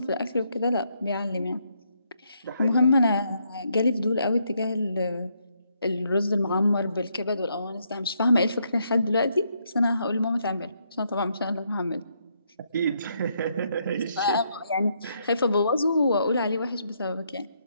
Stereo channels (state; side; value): inverted; both; correlation -0.75